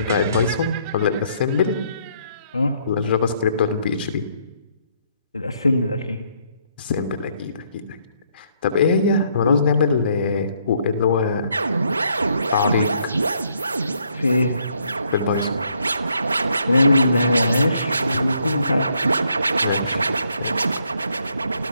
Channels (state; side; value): inverted; both; correlation -0.70